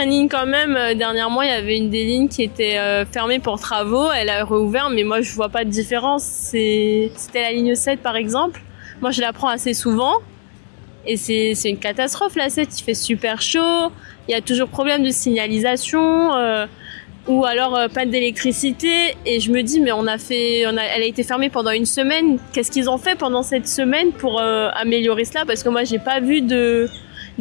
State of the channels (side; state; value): right; silent; digital silence